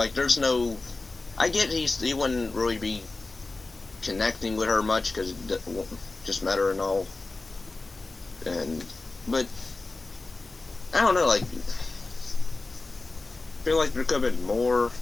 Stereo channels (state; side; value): quieter; right; 3.4 dB